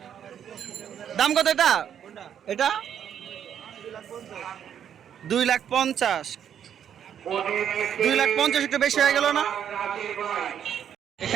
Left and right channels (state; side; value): quieter; left; 9.0 dB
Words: দাম কত এটা? এটা 2,50,000। 2,50,000 একটু বেশি হয়ে গেল না?